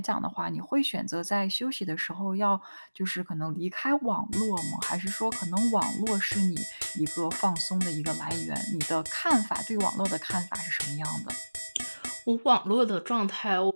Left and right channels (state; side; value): inverted; both; correlation -1.00